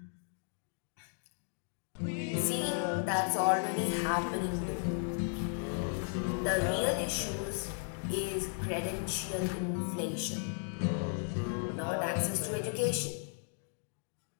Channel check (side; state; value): right; silent; 54 dB below the other